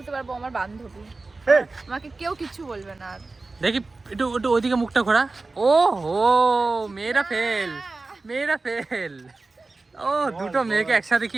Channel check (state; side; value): quieter; left; 3.6 dB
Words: পারবো আমার বান্ধবী। আমাকে কেউ কিছু বলবে না আর। দেখি একটু একটু ওইদিকে মুখটা ঘোরা। ও হো, মেয়েরা ফেল, মেয়েরা ফেল। ও দুটো মেয়েকে একসাথে কি